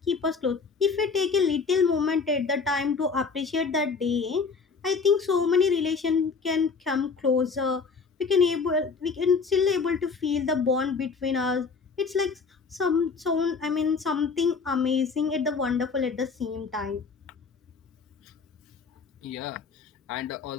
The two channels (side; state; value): right; quieter; 5.0 dB